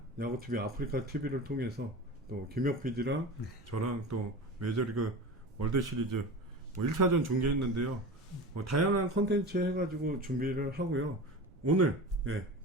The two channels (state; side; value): noise; right; rumble, 23 dB below the sound